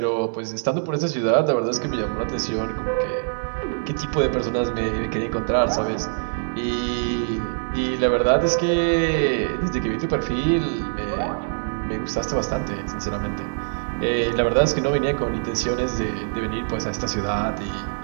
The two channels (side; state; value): left; silent; 61 dB below the other